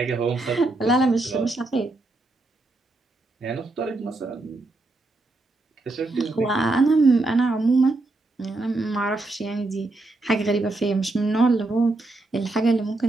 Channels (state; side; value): quieter; left; 3.1 dB